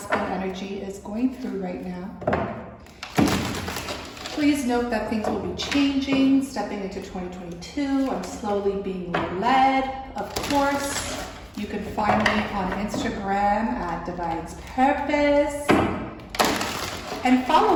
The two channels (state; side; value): identical; both; correlation 1.00